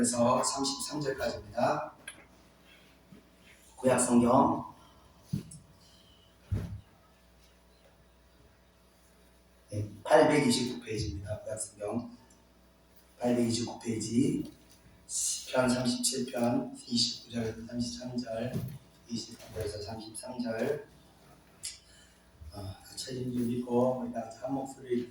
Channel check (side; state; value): both; identical; correlation 1.00